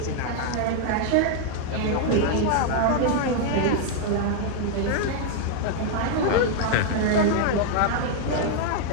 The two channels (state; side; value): different; both; correlation 0.00